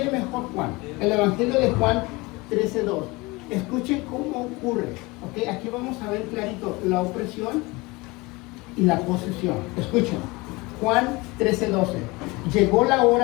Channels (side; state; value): right; quieter; 23.7 dB